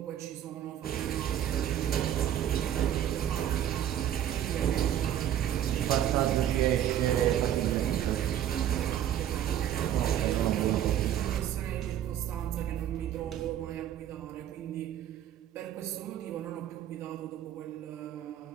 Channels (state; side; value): quieter; left; 10.8 dB